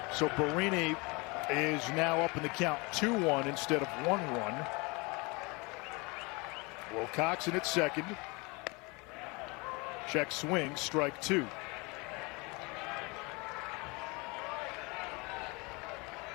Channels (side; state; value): right; quieter; 27.4 dB